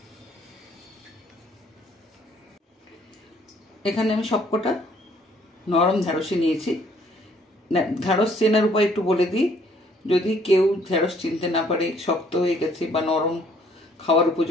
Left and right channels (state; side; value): normal; both; correlation 0.63